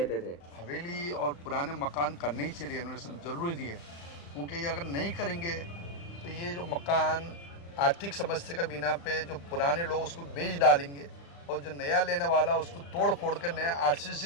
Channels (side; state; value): right; late; 35 ms